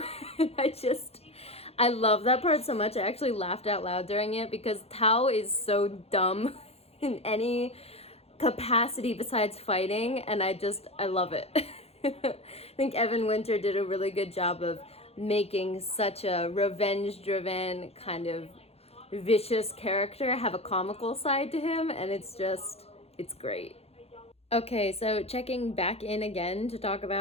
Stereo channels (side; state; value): right; late; 0.29 ms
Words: And I love that part so much. I actually laughed out loud during it because Tao is so dumb in any capacity besides fighting. And I love it. I think Evan Winter did a really good job of making such a revenge-driven kind of vicious character have a comical side to him. And it's great. Okay, so checking back in again to talk